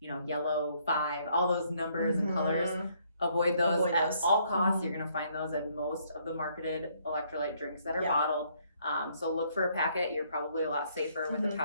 know, yellow, 5, all those numbers and colors. Avoid those at all costs. You're going to find those in most of the marketed electrolyte drinks that are bottled. So look for a packet. You're probably a lot safer with a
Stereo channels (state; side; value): inverted; both; correlation -0.68